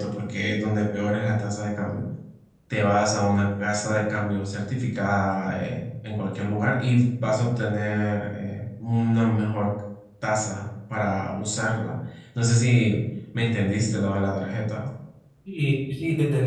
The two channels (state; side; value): identical; both; correlation 1.00